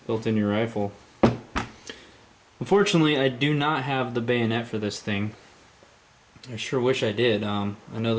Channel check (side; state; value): both; identical; correlation 1.00